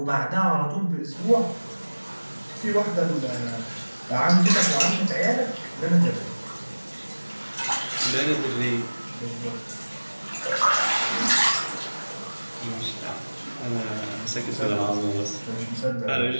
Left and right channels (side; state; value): both; inverted; correlation -1.00